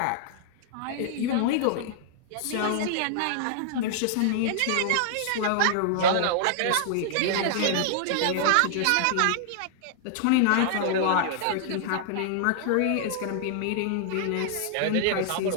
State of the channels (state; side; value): different; both; correlation -0.01